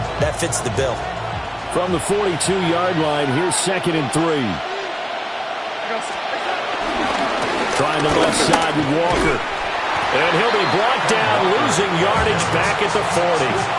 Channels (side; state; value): both; identical; correlation 1.00